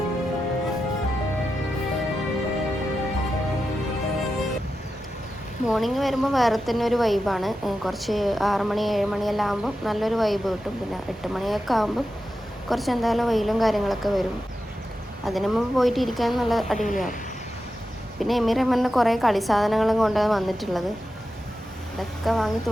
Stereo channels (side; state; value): both; normal; correlation 0.90